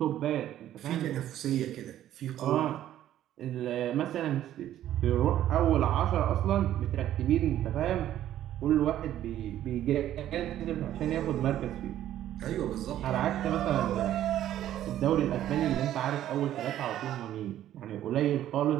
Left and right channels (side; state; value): left; quieter; 12.2 dB